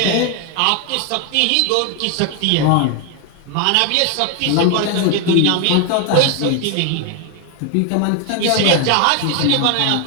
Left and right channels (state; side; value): different; both; correlation 0.01